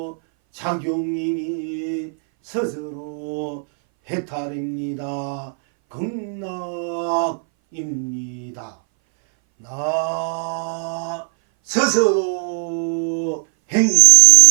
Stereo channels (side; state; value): left; silent; 61 dB below the other